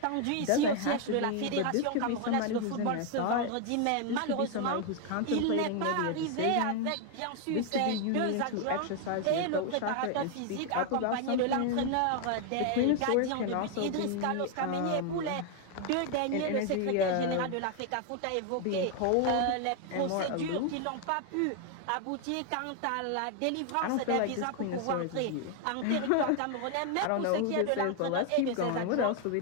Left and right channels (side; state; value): both; different; correlation 0.00